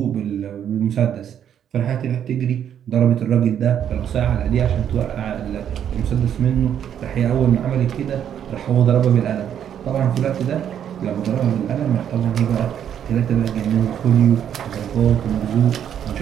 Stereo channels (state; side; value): quieter; left; 9.3 dB